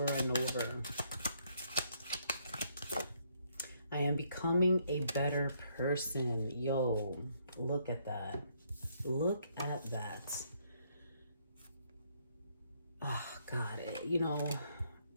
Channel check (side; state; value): both; inverted; correlation -0.71